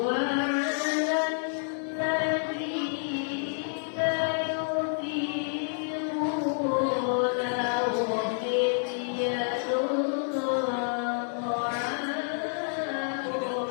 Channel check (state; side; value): silent; right; digital silence